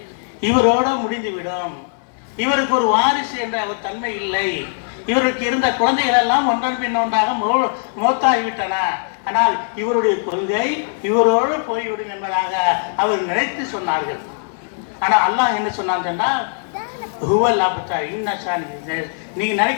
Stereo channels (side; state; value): right; silent; 60 dB below the other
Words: இவரோடு முடிந்துவிடும், இவருக்கு ஒரு வாரிசு என்ற ஒரு தன்மை இல்லை, இவருக்கு இருந்த குழந்தைகள் எல்லாம் ஒன்றன் பின் ஒன்றாக மோத்தாகிவிட்டன, ஆனால் இவருடைய கொள்கை இவரோடு போய்விடும் என்பதாக அவர் நினைத்து சொன்னார்கள். ஆனால் அல்லாஹ் என்ன சொன்னான் சொன்னால், நீங்க